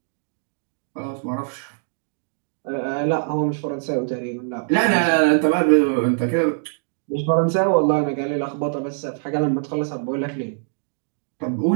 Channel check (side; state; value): left; silent; digital silence